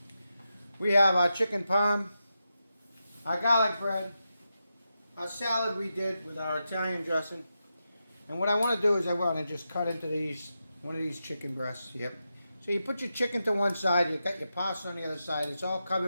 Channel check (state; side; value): inverted; both; correlation -0.88